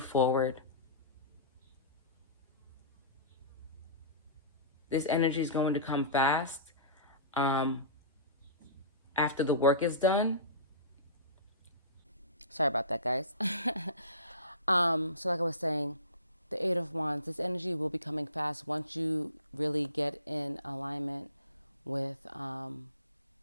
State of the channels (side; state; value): both; inverted; correlation -0.35